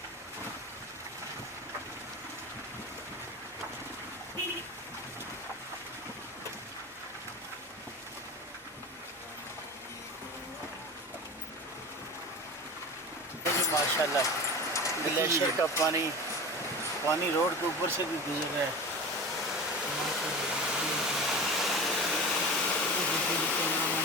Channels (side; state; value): both; normal; correlation 0.31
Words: माशाल्लाह ग्लेशियर का पानी रोड के ऊपर से भी गुजर रहा है।